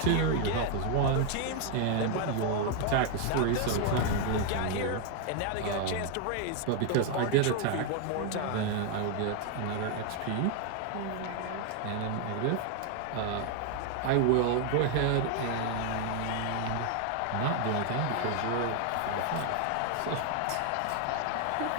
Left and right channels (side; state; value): both; different; correlation 0.01